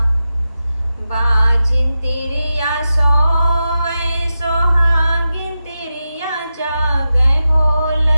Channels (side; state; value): both; inverted; correlation -0.91